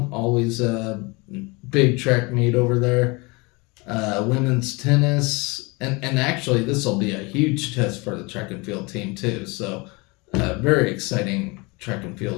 Always a big track meet over there. Women's tennis, and actually this will be a huge test for the track and field team too. So very exciting track and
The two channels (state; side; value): quieter; right; 26.9 dB